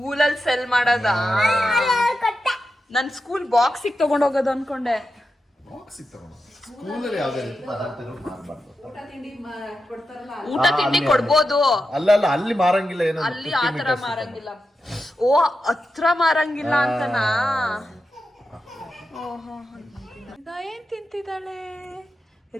ಸೆಲ್ ಮಾಡೋದಾ? ನನ್ ಸ್ಕೂಲ್ ಬಾಕ್ಸಿಗೆ ತಗೊಂಡೋಗೋದು ಅನ್ಕೊಂಡೆ. ಊಟ ತಿಂಡಿ ಕೊಡ್ಬೋದು. ಅಲ್ಲ ಅಲ್ಲಿ ಮಾರಂಗಿಲ್ಲ. ಏನೋ ಅಲ್ಲಿ ಆತರ ಮಾರಂಗಿಲ್ಲ. ಓ, ಹತ್ರ ಮಾರಂಗಿಲ್ಲ ಅಂತನಾ? ಓಹೋ, ರಿದಾ ಏನ್ ತಿಂತಿದ್ದಾಳೆ?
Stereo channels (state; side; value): normal; both; correlation 0.89